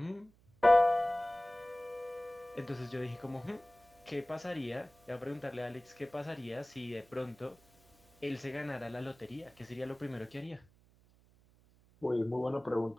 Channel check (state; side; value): noise; right; hum, 29 dB below the sound